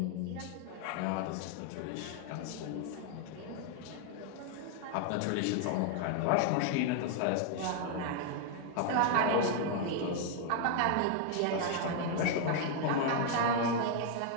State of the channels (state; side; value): different; both; correlation 0.00